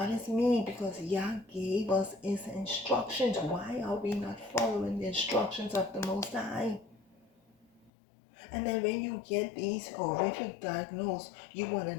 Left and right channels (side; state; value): right; drops out; at 7.9 s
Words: me because Yah gave us his instructions. Why are we not following the instructions of the Most High? And then when you get these horrific diagnoses, you want to